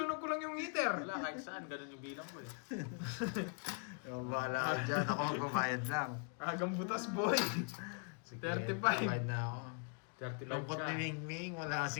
ko lang yung heater. Wala, kahit saan. Ganun yung bilang ko eh. Bahala ka dyan, ako magbabayad lang. Agang butas boy. Sige, 35. bayad na ako. 35 Lungkot ka. ni Mingming, wala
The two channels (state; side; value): quieter; right; 38.5 dB